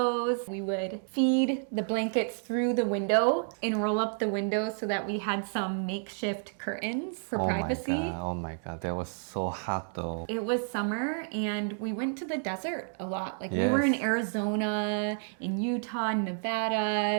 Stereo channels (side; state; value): left; silent; 58 dB below the other